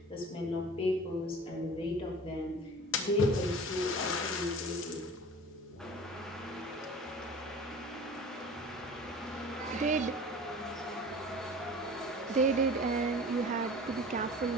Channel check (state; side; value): normal; both; correlation 0.40